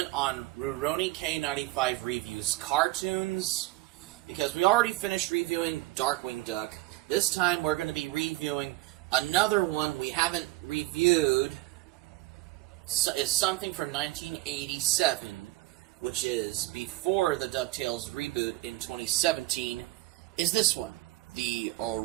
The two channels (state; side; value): quieter; left; 18.9 dB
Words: on RurouniK95 Reviews Cartoons, because we already finished reviewing Darkwing Duck. This time we're going to be reviewing another one we haven't reviewed. It's something from 1987, which is before the DuckTales reboot in 2017, is this one. The